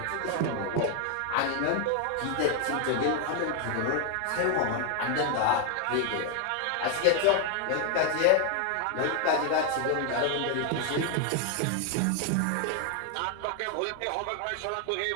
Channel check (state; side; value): different; both; correlation 0.01